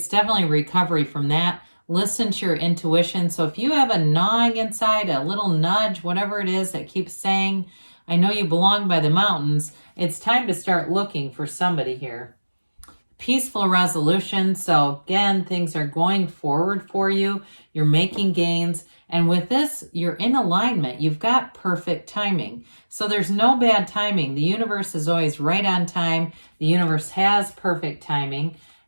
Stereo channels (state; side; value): inverted; both; correlation -1.00